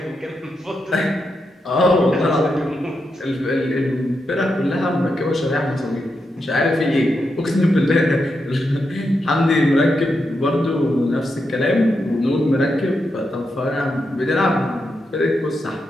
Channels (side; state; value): both; normal; correlation 0.85